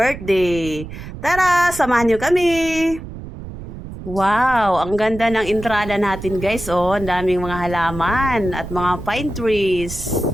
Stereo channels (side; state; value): right; noise; rumble, 11 dB below the sound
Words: Tara! Samahan niyo kami! Wow! Ang ganda ng entrada natin guys, oh! Ang daming mga halaman at mga pine trees.